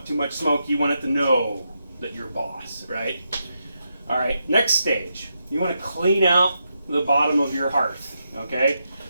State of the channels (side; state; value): both; inverted; correlation -0.84